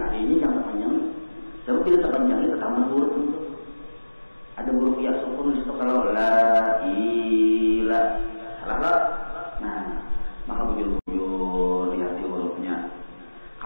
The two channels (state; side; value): inverted; both; correlation -1.00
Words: Nah I-nya jangan terpanjang nih. Sebab bila terpanjangnya tertambah huruf itu. Ada huruf ya sukun di situ kalau la ilaha. Salah lah. Nah, maka bujur-bujur lihat di hurufnya.